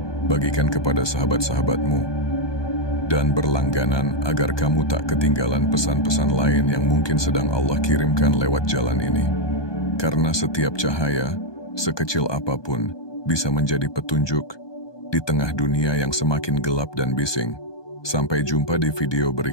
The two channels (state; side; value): late; right; 1.2 ms